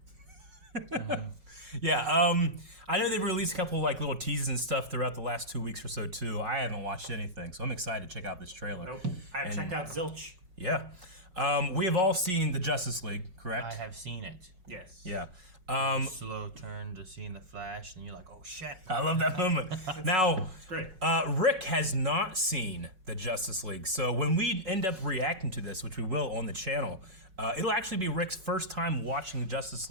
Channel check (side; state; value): left; late; 5.4 ms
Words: Yeah, I know they've released a couple like little teases and stuff throughout the last 2 weeks or so too. I haven't watched anything, so I'm excited to check out this trailer. Nope, I've checked out zilch. Yeah. We have all seen the Justice League, correct? I have seen it. Yes. Yeah. Slow turn to seeing the Flash, and you're like, oh shit. I love that moment. Now, It's great. Rick has not seen the Justice League, so when we end up reacting to this, which we will on the channel, it'll actually be Rick's first time watching Justice